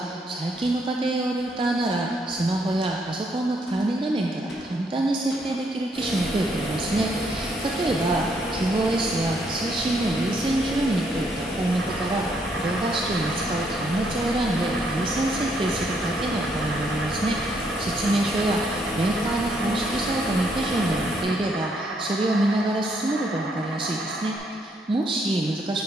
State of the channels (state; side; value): normal; both; correlation 0.72